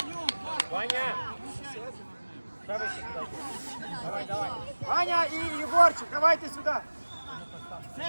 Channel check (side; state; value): both; inverted; correlation -1.00